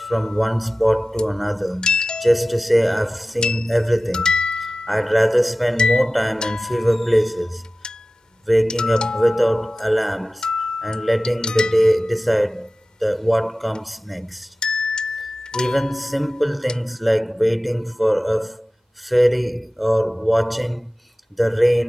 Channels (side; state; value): both; normal; correlation 0.96